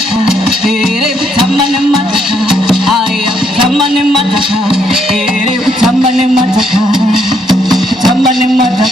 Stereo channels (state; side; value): normal; both; correlation 0.72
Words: ere tamane mataka, aya tamane mataka, ere tamane mataka, tamane